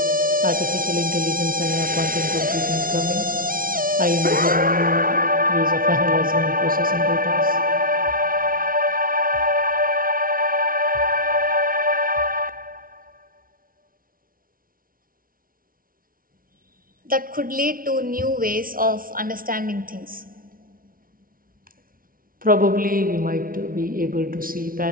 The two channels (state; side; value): late; left; 0.42 ms